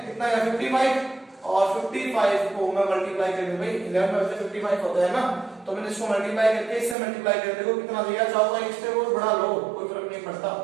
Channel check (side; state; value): left; drops out; at 7.0 s